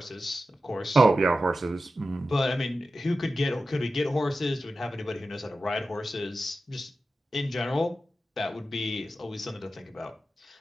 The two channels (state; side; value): normal; both; correlation 0.92